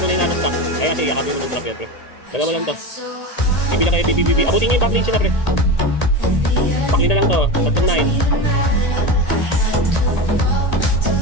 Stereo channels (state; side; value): late; right; 1.8 ms